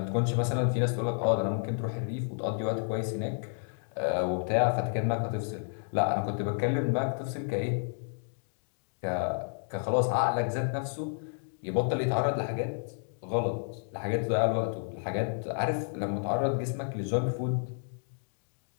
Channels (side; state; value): right; silent; digital silence